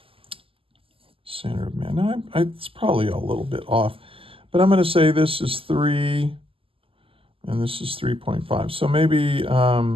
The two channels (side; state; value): left; late; 0.26 ms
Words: center of mass. Now, it's probably a little bit off, but I'm going to say this is 3, and this is 3.5. So maybe,